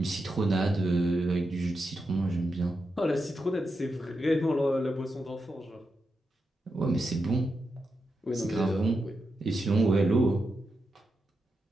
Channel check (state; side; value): normal; both; correlation 0.87